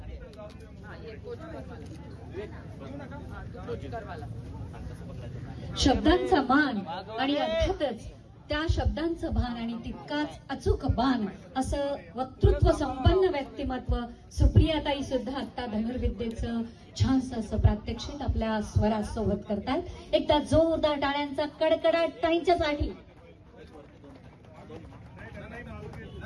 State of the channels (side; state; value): both; identical; correlation 1.00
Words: शब्दांचा मान आणि अर्थातच त्या शब्दांचं भान आणि तितकाच अचूक बाण असं वक्तृत्व संपन्न व्यक्तिमत्व सुप्रियाताई सुद्धा आता धनुर्विद्येचं छानसं असं प्रात्यक्षिक आपल्या स्वरासोबत करतात. एकदा जोरदार टाळ्यांचा कडकडाट ताईंच्यासाठी.